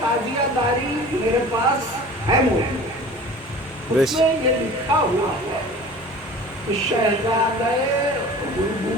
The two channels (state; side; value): normal; both; correlation 0.41